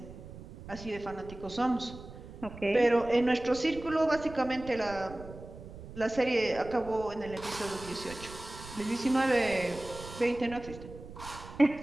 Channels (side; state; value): right; noise; rumble, 14 dB below the sound